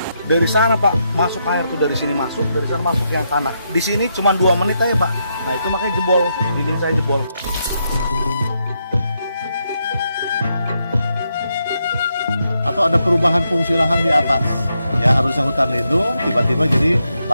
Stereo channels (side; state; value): both; inverted; correlation -0.81